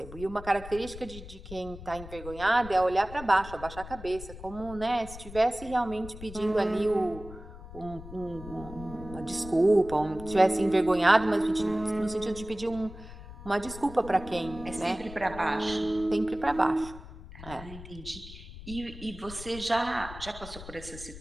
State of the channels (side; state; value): left; noise; rumble, 14 dB below the sound